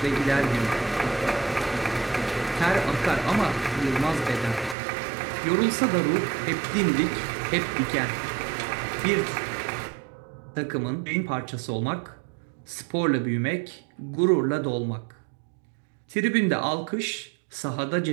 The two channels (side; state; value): left; drops out; at 4.8 s